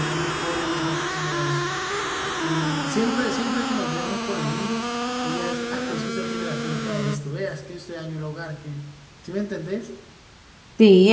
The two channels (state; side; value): identical; both; correlation 1.00